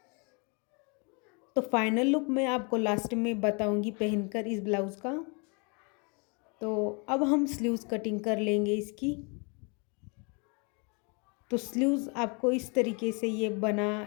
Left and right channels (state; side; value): quieter; right; 33.4 dB